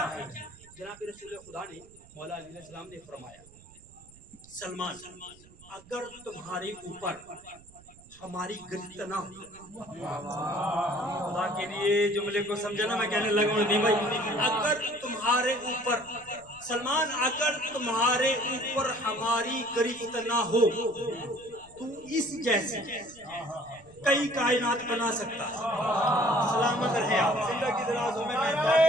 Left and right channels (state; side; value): noise; right; rumble, 24 dB below the sound